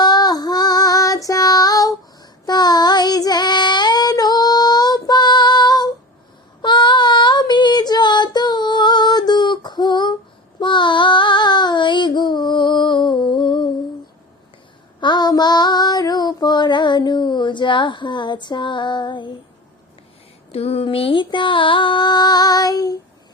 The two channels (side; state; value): both; normal; correlation 0.32